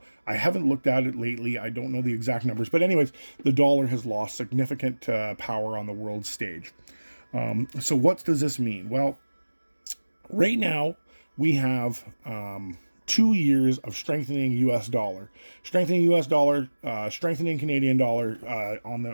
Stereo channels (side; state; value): both; inverted; correlation -1.00